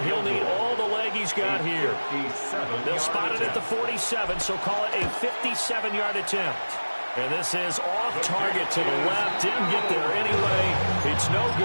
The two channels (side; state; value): both; inverted; correlation -1.00